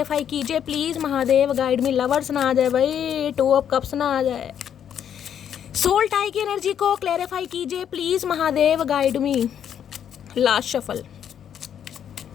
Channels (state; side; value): quieter; right; 9.1 dB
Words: कीजिए please Mahadev guide me. Lovers ना आ जाए भाई, 2 ऑफ कप्स ना आ जाए। सोल टाई की एनर्जी को क्लैरिफाई कीजिए please Mahadev guide me. Last shuffle,